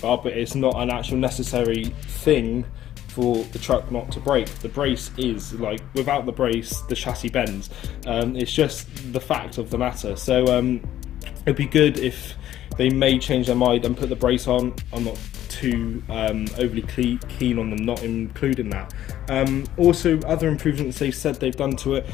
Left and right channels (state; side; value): quieter; right; 12.5 dB